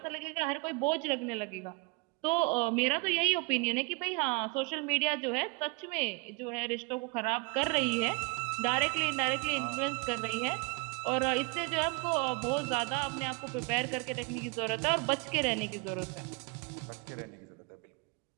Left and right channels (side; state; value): left; quieter; 29.4 dB